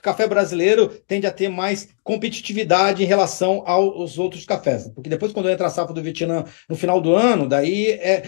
brasileiro tende a ter mais competitividade em relação aos outros cafés. Porque depois, quando entra a safra do Vietnã no final do ano, daí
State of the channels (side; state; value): right; silent; digital silence